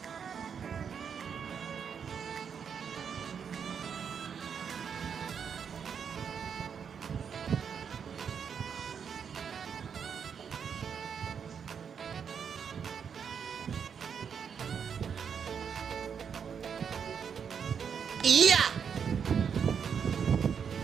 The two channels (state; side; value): quieter; left; 7.1 dB